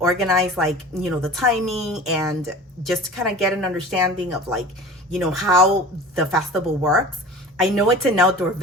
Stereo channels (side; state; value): both; normal; correlation 0.39